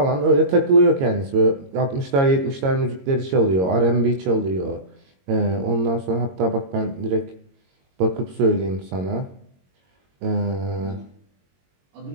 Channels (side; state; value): left; late; 22 ms